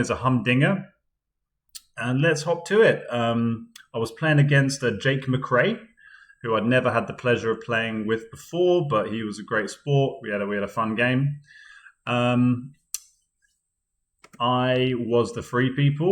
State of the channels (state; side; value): identical; both; correlation 1.00